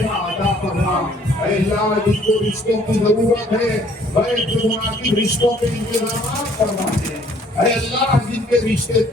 عطا فرما. اے اللہ جس کو رشتوں کی ضرورت ہے غیر سے مناسب رشتوں کے انتظامات فرما دے. اے اللہ جن کے رشتے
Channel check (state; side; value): normal; both; correlation 0.60